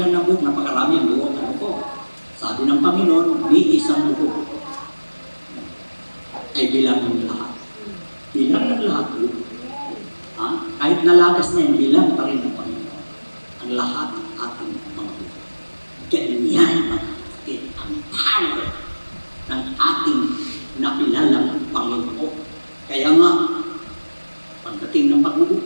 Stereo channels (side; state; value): both; inverted; correlation -1.00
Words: na buhok, napakarami ang buhok. Ano po? Sabi ng Panginoon, ni isang buhok ay bilang ng lahat. Bilang ng lahat po. Kahit nalagas niya, bilang pa rin ng Panginoon. Ang lahat ng ating mga buhok. Ganyan mga kapatid, ang power ng ating nakilalang Panginoon. Kaya nga, pagdating ng